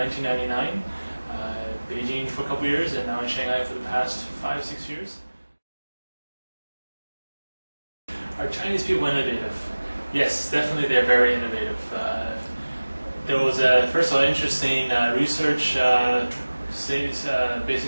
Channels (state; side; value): inverted; both; correlation -1.00